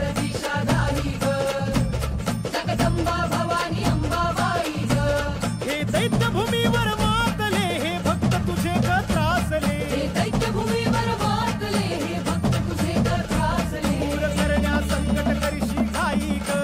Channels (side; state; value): both; identical; correlation 1.00